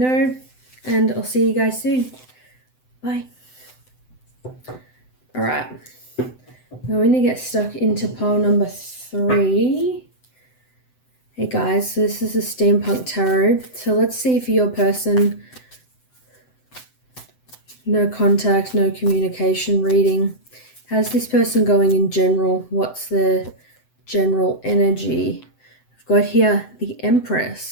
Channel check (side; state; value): right; late; 7.9 ms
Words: and I'll see you guys soon. Bye. Alright, we're going to get stuck into pile number 3. Hey guys, so this is a Steampunk Tarot. So let's see if your person, no contact, no communication reading. How's this person going in general? What's the general energy? I've got here the